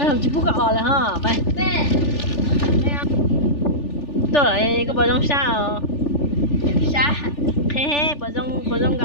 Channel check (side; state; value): right; late; 3.4 ms